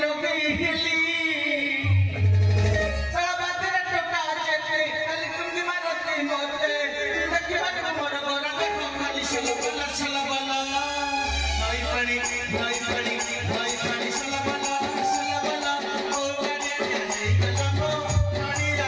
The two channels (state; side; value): identical; both; correlation 1.00